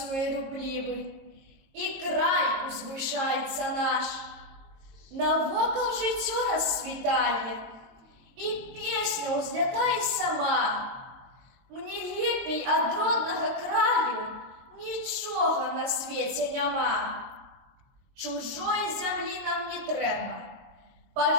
руплівий, і край узвишається наш. Навокал життя розцвітає, і пісня узлітає сама. Мені лепей од родного краю нічого на світі нема. Чужої землі нам не треба.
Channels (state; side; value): late; left; 22 ms